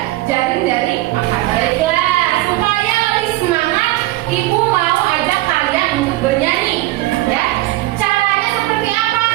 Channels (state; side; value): quieter; left; 17.9 dB